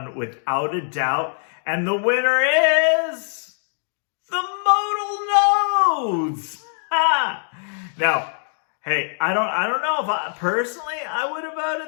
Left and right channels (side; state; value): right; silent; digital silence